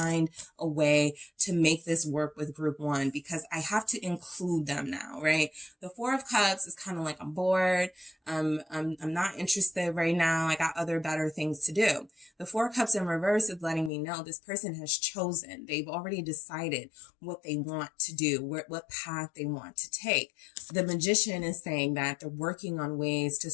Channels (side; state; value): right; drops out; at 13.9 s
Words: a way to make this work with group one because I have to include them now, right? The Four of Cups is kind of like, I'm bored. I'm not interested right now. I got other better things to do. The Four of Cups in reverse is letting me know this person has chosen. They've already decided what they want to do, what path they want to take. The Magician is saying that they're working on ways to